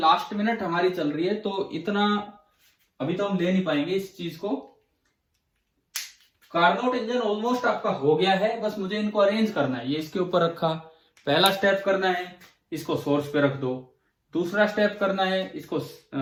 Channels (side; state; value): both; identical; correlation 1.00